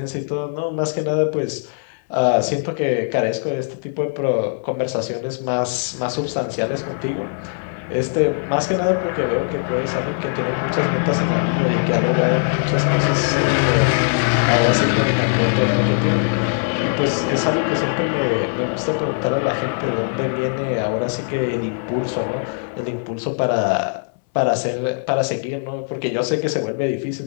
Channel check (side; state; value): right; silent; 65 dB below the other